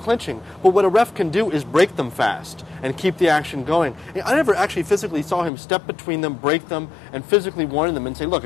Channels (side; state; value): right; drops out; at 5.5 s